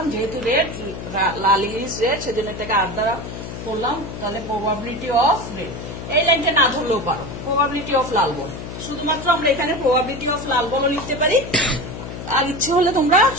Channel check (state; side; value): noise; left; hum, 9 dB below the sound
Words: যেহেতু রেড, লাল ইংলিশ রেড, সেজন্য এটাকে 8 দ্বারা করলাম। তাহলে প্রবাবিলিটি অফ রেড, এই লাইনটা না ধরলেও পারো, প্রবাবিলিটি অফ লাল বল। শুধুমাত্র আমরা এখানে প্রবাবিলিটি অফ লাল বলও লিখতে পারি, আর ইচ্ছে হলে তোমরা